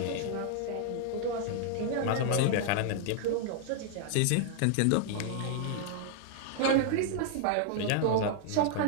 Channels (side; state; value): both; different; correlation 0.00